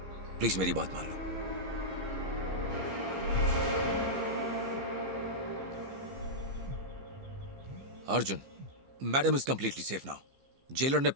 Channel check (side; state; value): left; late; 15 ms